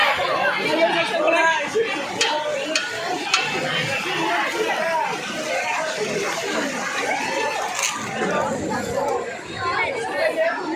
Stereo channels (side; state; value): both; identical; correlation 1.00